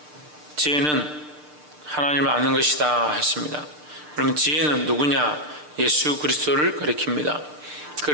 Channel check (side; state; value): left; late; 6.7 ms